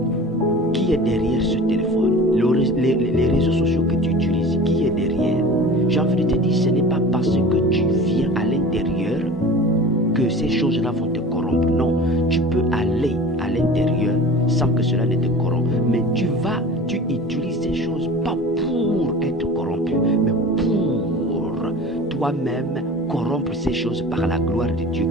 Qui est derrière ce téléphone? Les réseaux sociaux que tu utilises, qui est derrière? J'ai envie de te dire, ce n'est pas parce que tu viens à l'intérieur que ces choses-là vont te corrompre. Non, tu peux aller à l'intérieur sans que cela ne te corrompe. Mais tu utilises ces choses pas pour être corrompu, mais pour toi-même corrompre ces choses par la gloire de Dieu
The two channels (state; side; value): normal; both; correlation 0.38